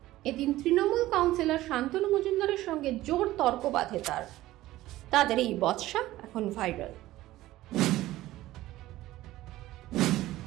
এদিন তৃণমূল কাউন্সিলর শান্তনু মজুমদারের সঙ্গে জোর তর্ক বাঁধে তাদের এই বচসা এখন ভাইরাল।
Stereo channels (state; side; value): quieter; left; 16.1 dB